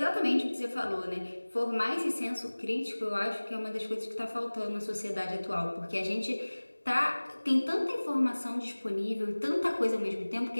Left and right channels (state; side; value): inverted; both; correlation -1.00